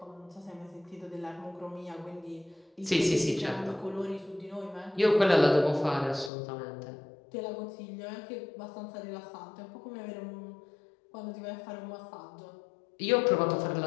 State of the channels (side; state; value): right; drops out; at 6.3 s